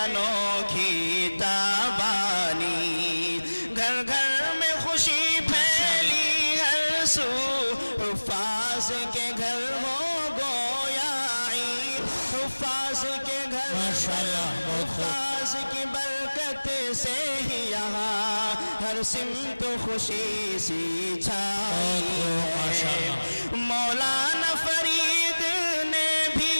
انوکھی تابانی، گھر گھر میں خوشی پھیلی ہر سو، حفاظ کے گھر ہو گویا عید، حفاظ کے گھر، حفاظ کی برکت سے ہی یہاں ہر سمت خوشی سی چھائی ہے، مولانا فرید نے بھی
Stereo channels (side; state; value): both; inverted; correlation -1.00